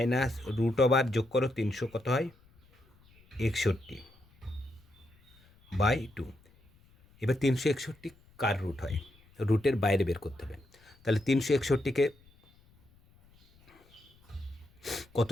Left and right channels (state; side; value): noise; left; rumble, 29 dB below the sound